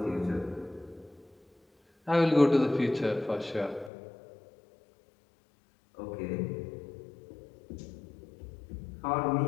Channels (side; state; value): right; drops out; at 3.9 s